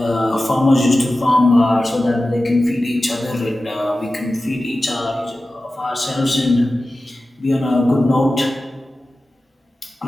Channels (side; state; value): both; normal; correlation 0.95